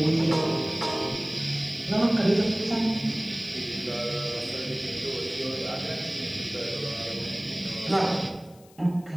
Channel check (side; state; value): left; noise; hiss, 27 dB below the sound